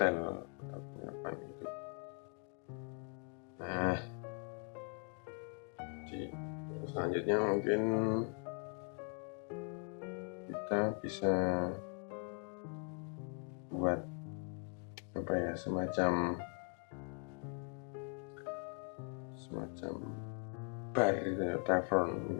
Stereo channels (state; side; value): quieter; right; 34.8 dB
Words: atau apa gitu. Nah, jadi selanjutnya mungkin kita bisa buat apa ya, semacam bar gitu ya, tavern,